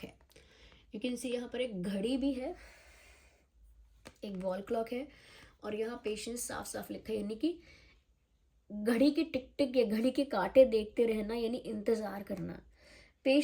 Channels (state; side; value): identical; both; correlation 1.00